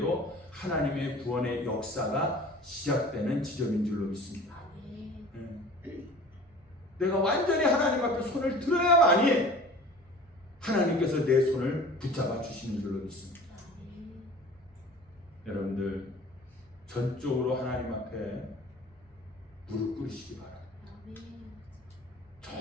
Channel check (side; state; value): both; normal; correlation 0.43